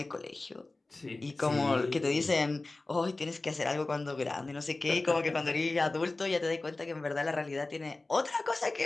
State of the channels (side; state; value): right; quieter; 3.2 dB